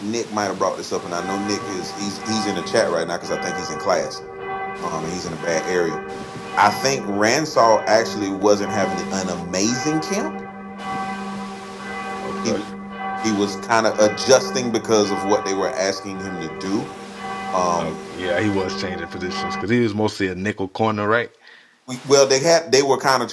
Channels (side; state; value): both; identical; correlation 1.00